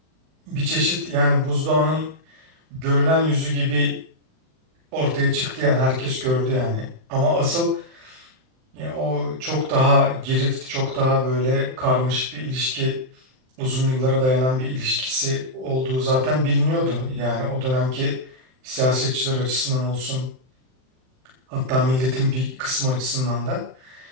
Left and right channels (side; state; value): left; late; 39 ms